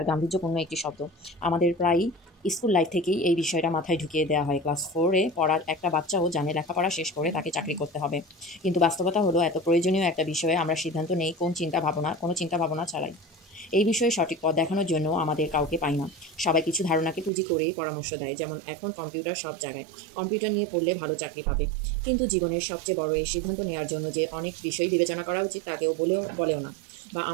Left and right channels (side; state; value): left; drops out; at 17.3 s